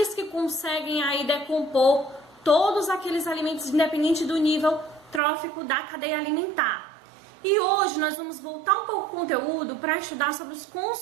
que conseguem aí decompor todos aqueles alimentos, independente do nível trófico da cadeia alimentar. E hoje nós vamos voltar um pouco o conteúdo para estudar sobre os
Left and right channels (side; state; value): left; drops out; at 5.2 s